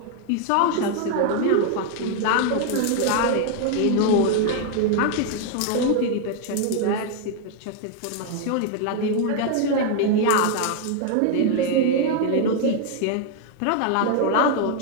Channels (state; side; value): different; both; correlation 0.00